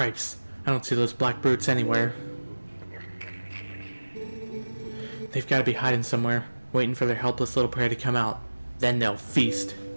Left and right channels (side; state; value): both; inverted; correlation -1.00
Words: I don't see those black brutes anywhere. They've got to be hiding somewhere, waiting for their helpless little prey to come out. Then they'll feast.